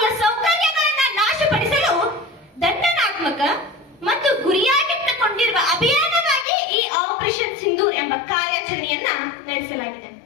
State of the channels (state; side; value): drops out; right; at 6.5 s